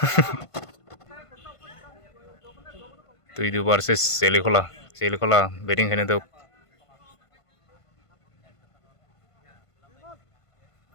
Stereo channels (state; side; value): late; right; 1.5 ms